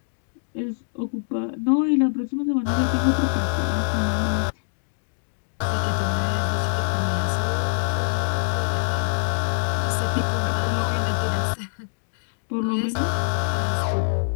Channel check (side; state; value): right; silent; digital silence